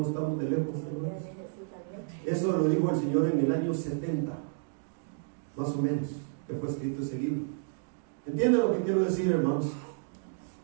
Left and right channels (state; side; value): silent; left; digital silence